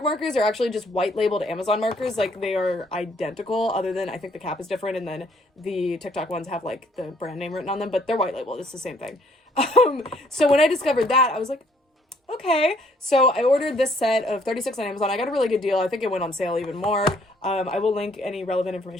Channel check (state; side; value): normal; both; correlation 0.64